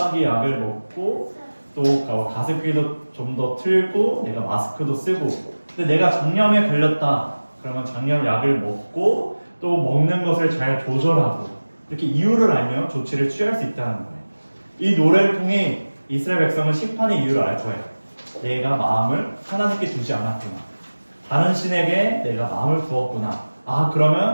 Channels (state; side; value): inverted; both; correlation -1.00